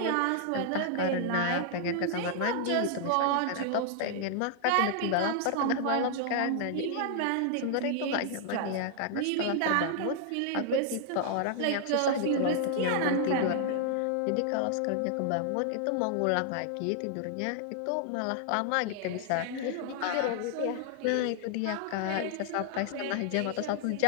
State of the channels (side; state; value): both; different; correlation 0.00